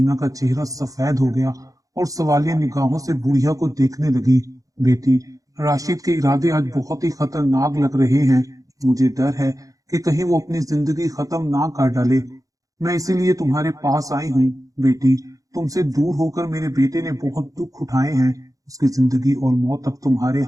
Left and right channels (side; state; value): left; late; 0.17 ms